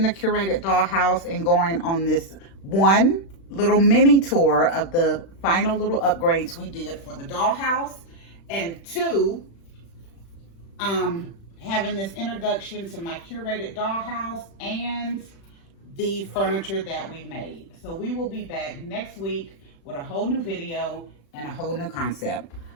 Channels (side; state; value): right; late; 36 ms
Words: the Curated Dollhouse and going on this one little mini tour of the final little upgrades we did for the dollhouse, and two, having this introduction to my curated dollhouse and the furniture that we made. So we will be back next week with a whole new video and a whole new concept.